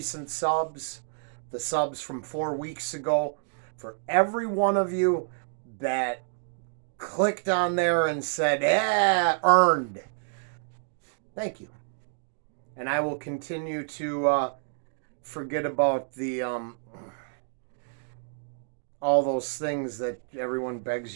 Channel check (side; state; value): left; silent; digital silence